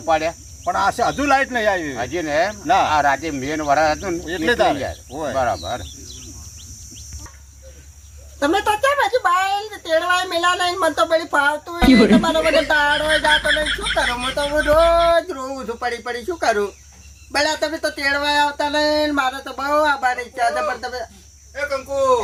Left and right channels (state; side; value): identical; both; correlation 1.00